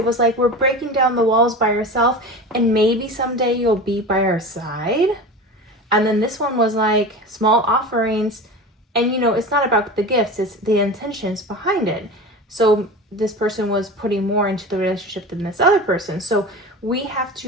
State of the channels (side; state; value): both; normal; correlation 0.31